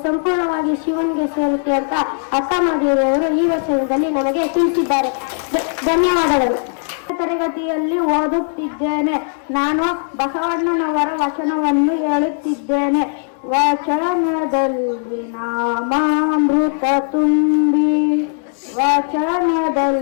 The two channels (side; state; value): right; silent; digital silence